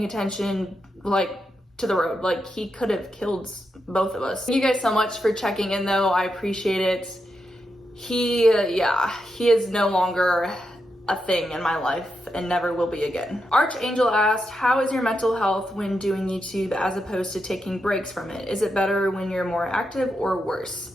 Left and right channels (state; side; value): normal; both; correlation 0.85